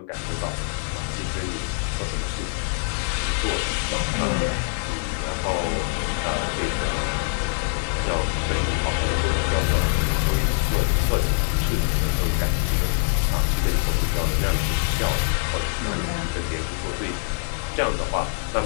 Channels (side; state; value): right; silent; digital silence